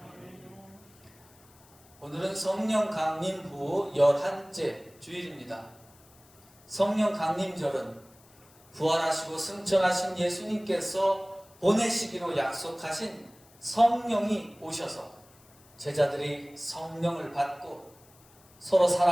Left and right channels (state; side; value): noise; left; hiss, 27 dB below the sound